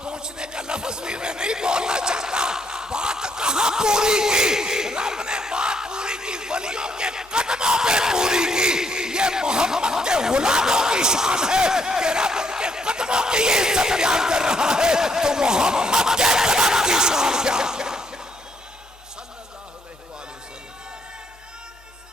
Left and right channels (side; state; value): both; normal; correlation 0.72